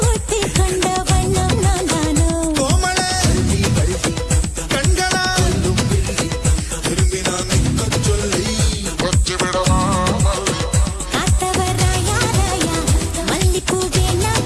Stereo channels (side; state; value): both; identical; correlation 1.00